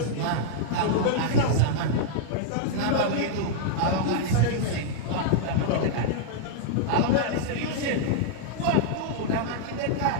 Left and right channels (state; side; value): different; both; correlation -0.01